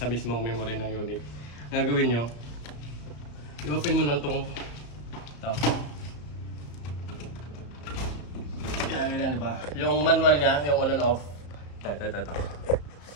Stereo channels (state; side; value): late; right; 34 ms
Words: mismong memory ng unit. Ang gagawin nyo, i-open mo lang itong yan, diba? Yung manual niya, yung on and off. Ito.